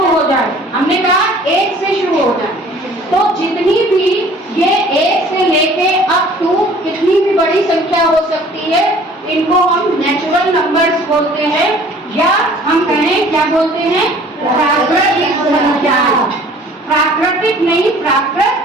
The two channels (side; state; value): both; normal; correlation 0.52